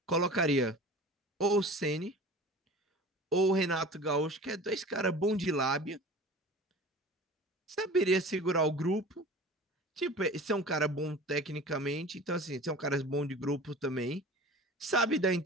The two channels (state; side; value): normal; both; correlation 0.39